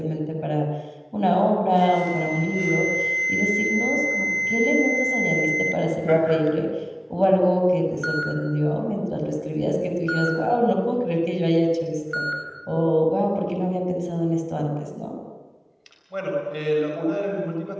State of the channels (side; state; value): both; identical; correlation 1.00